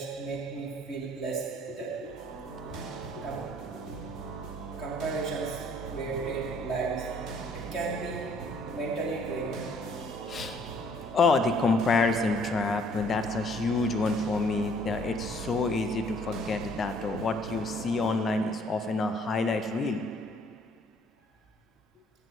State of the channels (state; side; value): normal; both; correlation 0.60